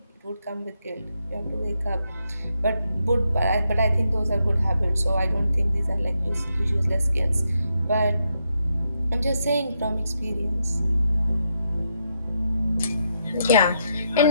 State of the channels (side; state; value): both; inverted; correlation -0.81